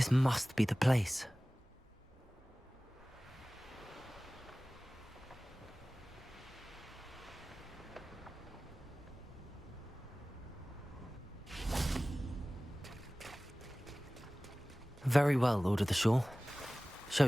must be the place. Very well, Lord of the Shore. Show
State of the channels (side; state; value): both; normal; correlation 0.98